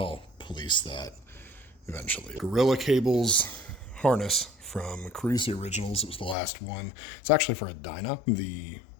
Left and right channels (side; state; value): right; drops out; at 6.4 s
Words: police that eventually. Gorilla cables harness from Cruisey Originals. It was the last one. It's actually for a Dyna. The